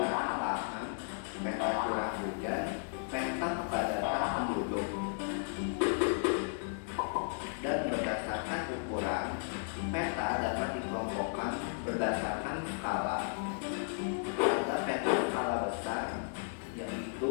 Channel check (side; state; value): right; silent; digital silence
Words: lahan, peta curah hujan, peta kepadatan penduduk. Dan berdasarkan ukuran, peta dapat dikelompokkan berdasarkan skala. Ada peta skala besar, yaitu